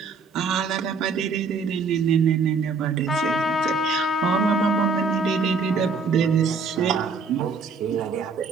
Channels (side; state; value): left; quieter; 4.5 dB